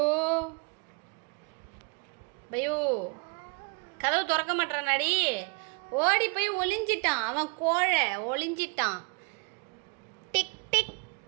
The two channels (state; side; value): quieter; left; 34.5 dB